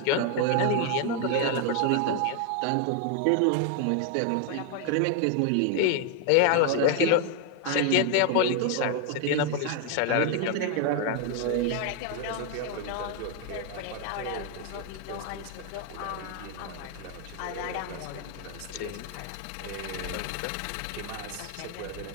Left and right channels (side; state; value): both; different; correlation 0.00